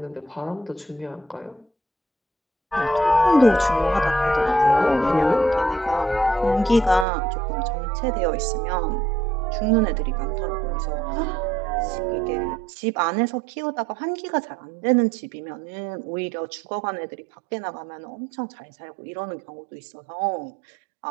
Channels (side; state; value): left; drops out; at 7.1 s